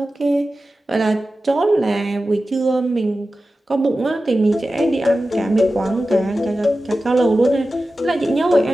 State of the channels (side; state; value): both; normal; correlation 0.94